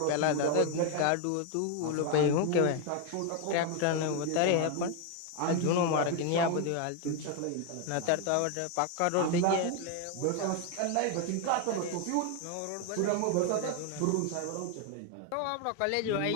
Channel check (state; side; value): different; both; correlation 0.01